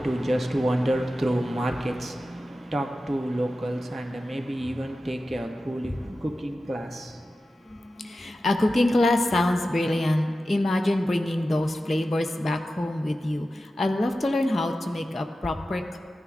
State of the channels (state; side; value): normal; both; correlation 0.93